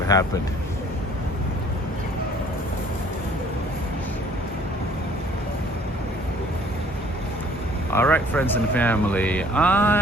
happened. All right, friends and family,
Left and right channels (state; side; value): normal; both; correlation 0.56